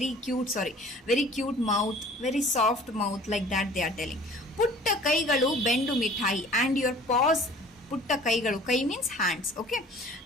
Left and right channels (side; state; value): both; normal; correlation 0.49